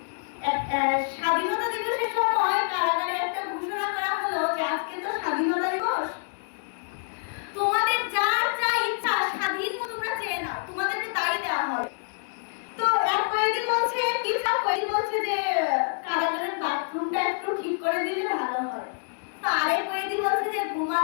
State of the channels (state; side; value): silent; right; digital silence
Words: স্বাধীনতা দিবসের সময় কারাগারে একটা ঘোষণা করা হলো যে আজকে তো স্বাধীনতা দিবস, তোমাদের যার যা ইচ্ছা স্বাধীন মতো তোমরা চেয়ে নাও, তোমাদেরকে তাই দেওয়া হবে। তো এক কয়েদি বলছে, কিছু কয়েদি বলছে যে কারাগারের বাথরুমটা একটু ঠিক করে দিলে ভালো হয়। তো আরেক কয়েদি বলছে যে